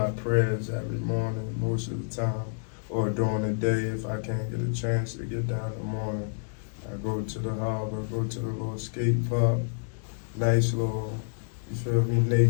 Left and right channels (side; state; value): right; silent; digital silence